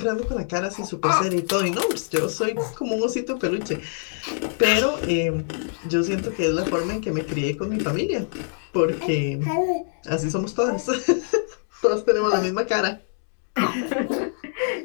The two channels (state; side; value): silent; right; digital silence